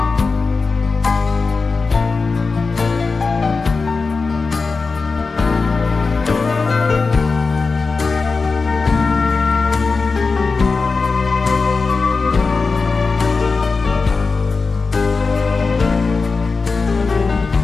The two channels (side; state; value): right; quieter; 4.3 dB